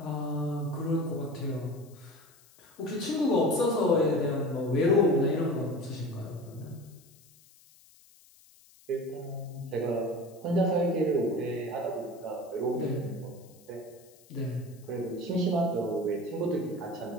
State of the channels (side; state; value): left; noise; hiss, 27 dB below the sound